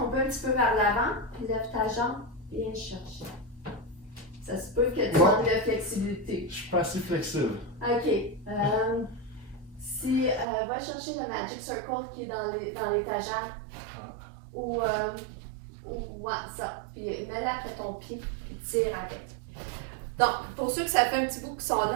un petit peu vers l'avant, puis lève ta jambe, viens chercher. Ça se peut que tu manques de flexibilité. Je suis pas assez flexible. OK. Va chercher le Magic Circle qui est dans l'étagère. Ou ça. Puis mets-le après ton pied, puis tire avec. Donc, pour ceux que ça fait un petit bout qui sont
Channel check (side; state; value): left; drops out; at 10.5 s